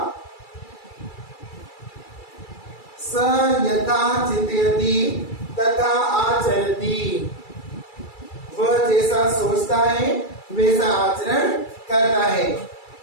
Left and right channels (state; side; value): late; right; 2.3 ms